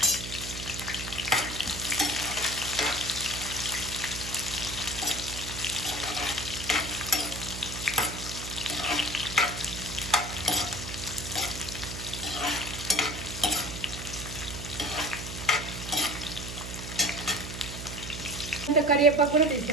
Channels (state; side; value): noise; right; hum, 8 dB below the sound